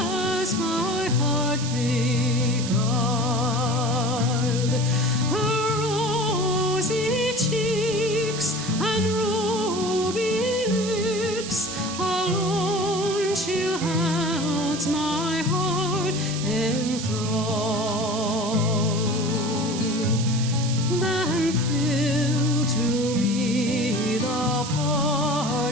my heart beguiled. Her rosy cheeks and ruby lips alone she holds my heart in thrall. Then fill to me the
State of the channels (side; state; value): right; noise; hiss, 8 dB below the sound